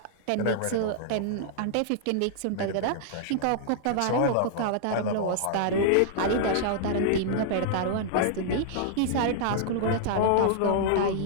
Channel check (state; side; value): different; both; correlation -0.01